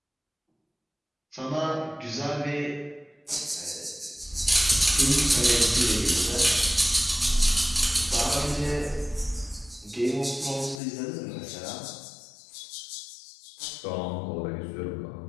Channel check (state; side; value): drops out; right; at 10.8 s